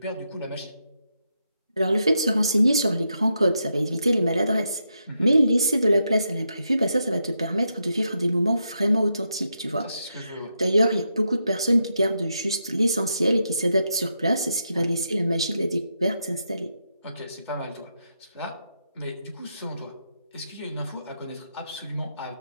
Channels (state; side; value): inverted; both; correlation -0.83